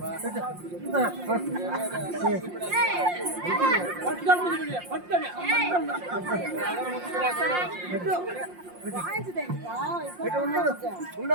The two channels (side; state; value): left; late; 5.6 ms